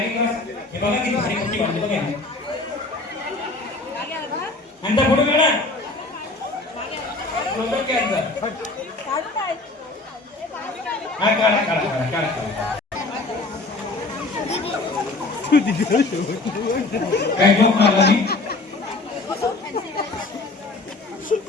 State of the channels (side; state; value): right; quieter; 3.2 dB